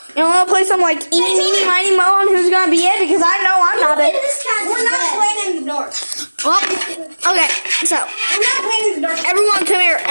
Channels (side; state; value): both; inverted; correlation -1.00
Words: You know, wanna play some like eeny, meeny, miny, mo on who's gonna be it, because I know I'm not it. We're not playing in the dark. Well, okay, so We're not playing in the dark. everyone come here.